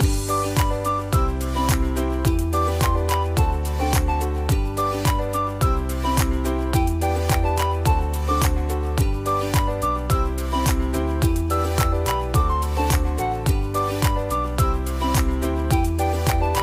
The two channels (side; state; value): both; identical; correlation 1.00